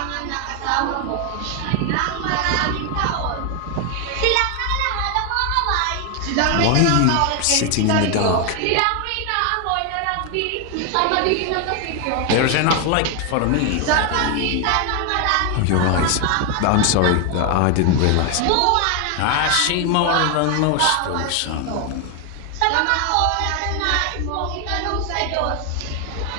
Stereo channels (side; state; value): both; different; correlation 0.01